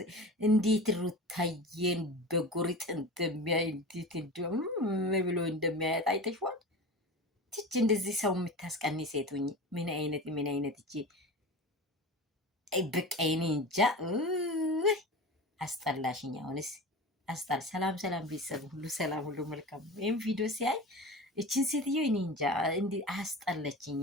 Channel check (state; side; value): normal; both; correlation 0.32